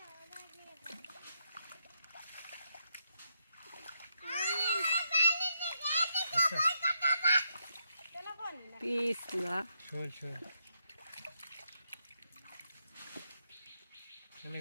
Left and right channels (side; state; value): both; inverted; correlation -0.81